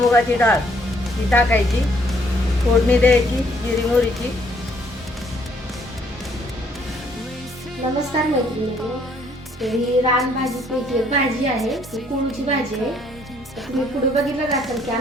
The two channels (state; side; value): normal; both; correlation 0.65